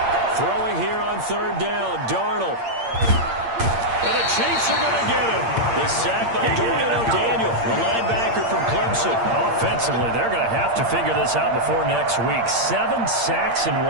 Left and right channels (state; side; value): late; left; 8.7 ms